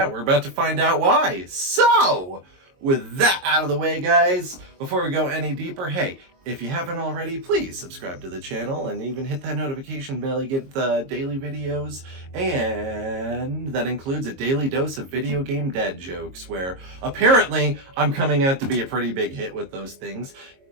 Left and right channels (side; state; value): left; late; 22 ms